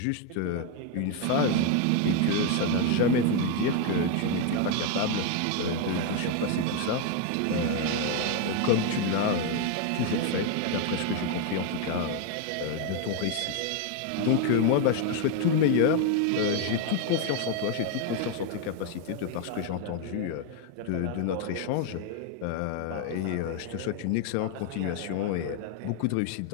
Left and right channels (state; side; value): different; both; correlation 0.01